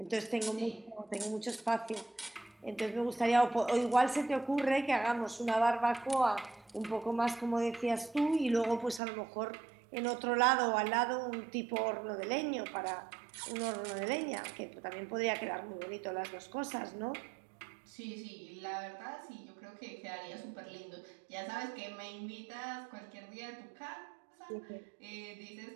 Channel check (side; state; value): left; drops out; at 9.0 s